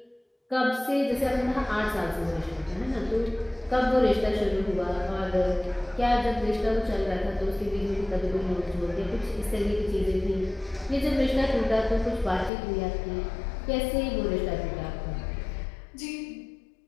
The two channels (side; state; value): right; drops out; at 12.5 s